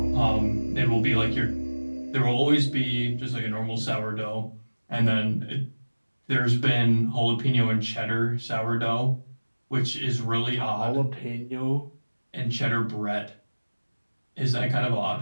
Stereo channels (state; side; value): inverted; both; correlation -1.00